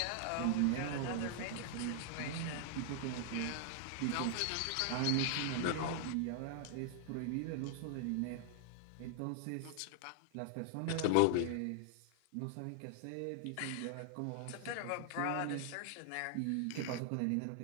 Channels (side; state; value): both; different; correlation 0.00